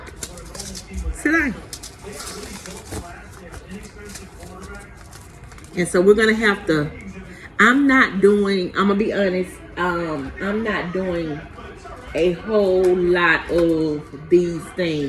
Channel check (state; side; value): identical; both; correlation 1.00